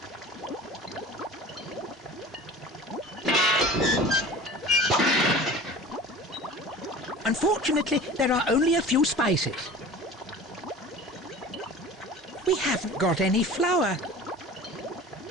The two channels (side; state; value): both; normal; correlation 0.40